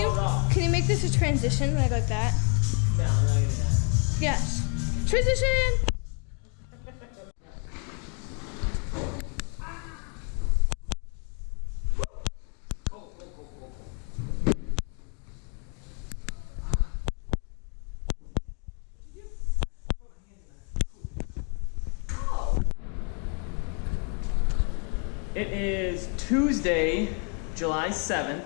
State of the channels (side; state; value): right; quieter; 39.2 dB